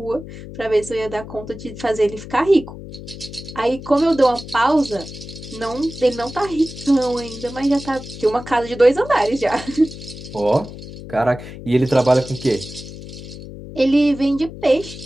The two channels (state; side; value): noise; left; hum, 13 dB below the sound